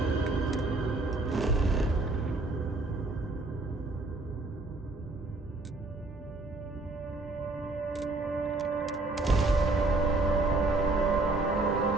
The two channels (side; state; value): left; quieter; 3.1 dB